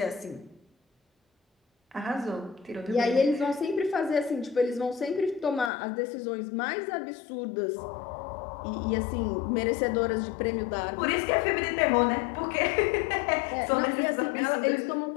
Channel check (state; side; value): drops out; right; at 5.7 s